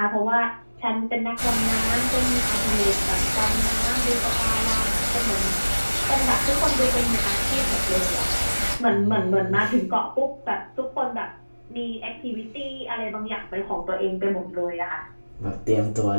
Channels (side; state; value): both; inverted; correlation -1.00